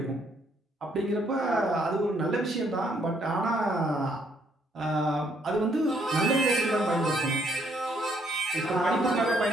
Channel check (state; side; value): normal; both; correlation 0.69